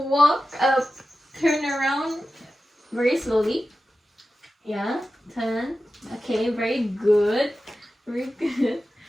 up, turn around very slowly. Yeah, turn. Okay, very good. Very good.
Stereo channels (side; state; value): both; normal; correlation 0.93